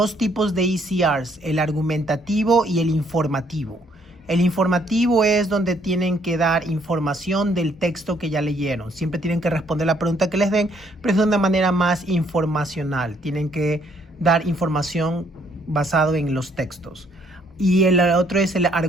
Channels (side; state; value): both; normal; correlation 0.67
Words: tipos de ECRs, el argumentativo y el informativo. El informativo es donde tienen que dar información del texto que ya leyeron. Siempre tienen que responder la pregunta que les den, pero es de una manera más informacional. Tienen que dar información basado en los textos. Y el otro es el